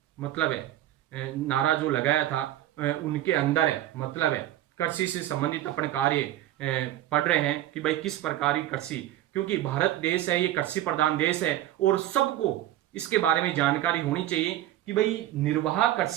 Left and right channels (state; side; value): quieter; left; 13.6 dB